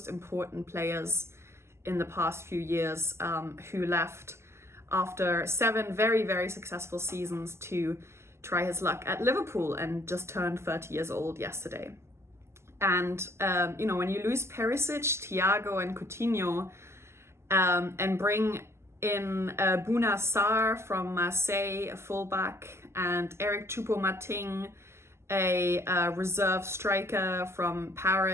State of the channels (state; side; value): late; left; 0.13 ms